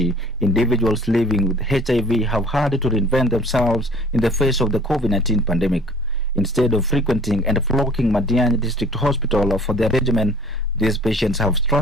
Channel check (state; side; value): normal; both; correlation 0.51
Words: individuals living with HIV have had to reinvent themselves in the face of the COVID-19 pandemic. Instead of frequenting and flocking Madiani District Hospital for their regimen, these patients have